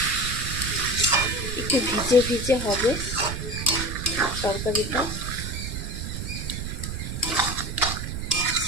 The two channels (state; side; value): noise; right; rumble, 5 dB below the sound